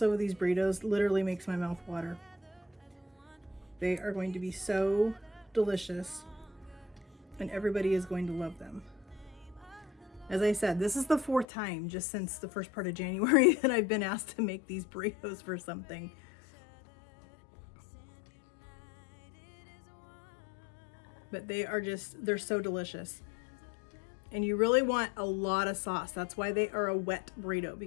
over these burritos literally makes my mouth water. They are going to be so delicious and everybody is going to love them. As I said, this is the 4th time just since the first part of January that I've been asked to make these burritos for something. But they're so delicious. And you really want a lot of sauce. That's why they are a wet burrito,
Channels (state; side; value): drops out; right; at 11.5 s